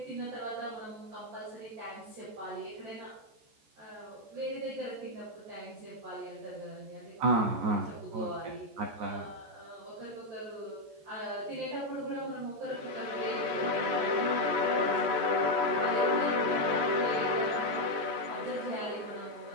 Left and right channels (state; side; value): late; left; 14 ms